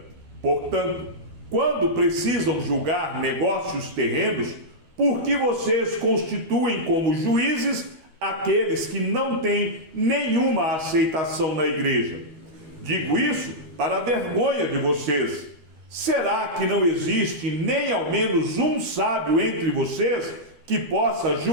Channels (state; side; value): late; left; 12 ms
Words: Portanto, quando precisam julgar negócios terrenos, por que vocês constituem como juízes aqueles que não têm nenhuma aceitação na igreja? Digo isso para a vergonha de vocês. Será que não existe nem ao menos um sábio entre vocês que possa